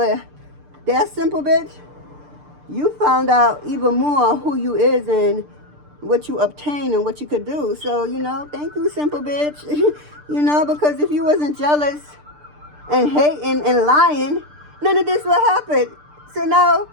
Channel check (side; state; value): left; late; 6.7 ms